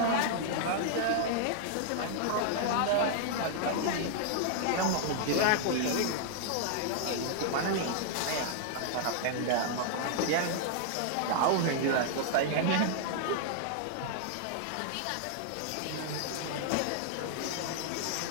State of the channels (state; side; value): different; both; correlation -0.01